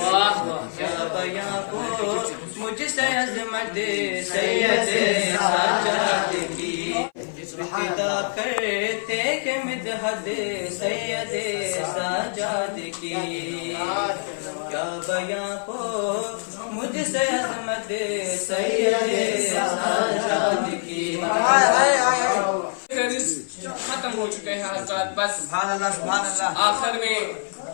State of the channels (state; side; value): silent; right; 57 dB below the other